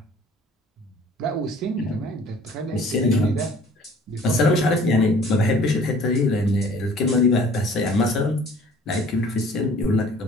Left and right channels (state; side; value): normal; both; correlation 0.51